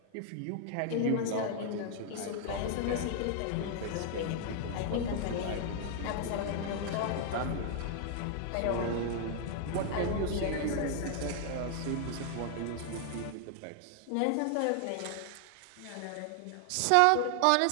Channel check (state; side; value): different; both; correlation 0.00